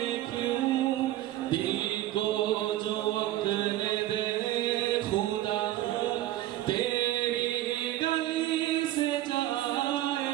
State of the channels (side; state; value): left; quieter; 14.7 dB